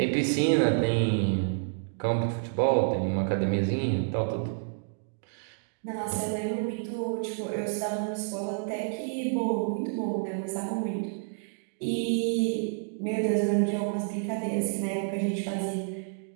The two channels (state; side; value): silent; left; digital silence